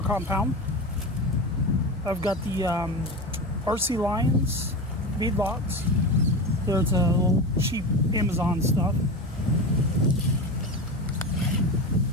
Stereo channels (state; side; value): normal; both; correlation 0.24